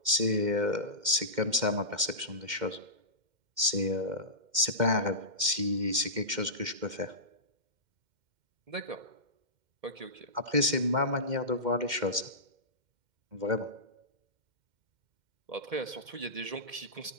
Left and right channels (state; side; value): late; left; 2.1 ms